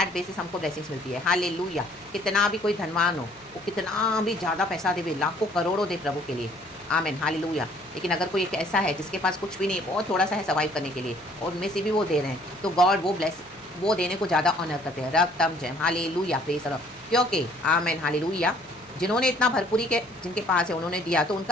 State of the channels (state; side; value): noise; right; hum, 27 dB below the sound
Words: बेसिस हमको ब्लेसिंग्स मिलती है। हालेलुया। कितना भी कोई धनवान हो, वो कितना भी ज़्यादा पैसा दे, लाखों करोड़ों दे प्रभु के लिए, आमीन, हालेलुया। लेकिन अगर कोई एक ऐसा है जिसके पास कुछ भी नहीं, बहुत थोड़ा सा है सर्वाइव करने के लिए, और उनमें से भी वो दे रहे हैं, तो गॉड वो देने को ज़्यादा ऑनर करते हैं, रक्तम जयम। Hallelujah, praise the Lord. क्योंकि आमीन, हालेलुया, जिन्होंने इतना भरपूरी के जिनके पास है उन्होंने दिया, तो